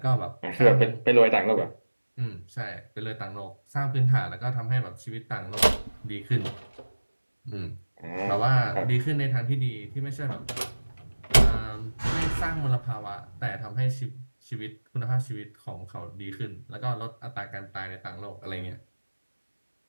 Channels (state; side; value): inverted; both; correlation -1.00